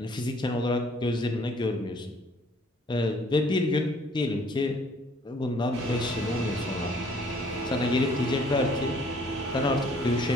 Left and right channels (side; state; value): both; normal; correlation 0.59